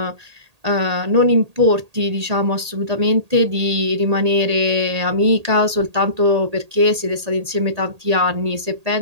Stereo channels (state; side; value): late; left; 1.8 ms